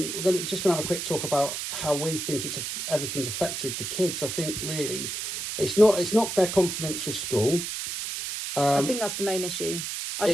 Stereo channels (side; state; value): right; noise; hiss, 4 dB below the sound